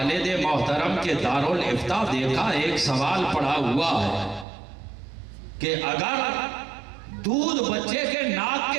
محترم کے دارالفتاء، دیکھا ایک سوال پڑا ہوا ہے کہ اگر دودھ بچے کے ناک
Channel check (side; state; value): left; drops out; at 4.5 s